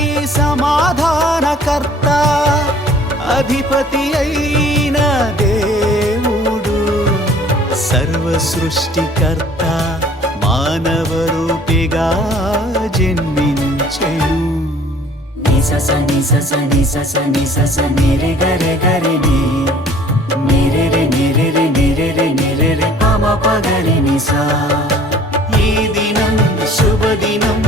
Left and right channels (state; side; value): normal; both; correlation 0.53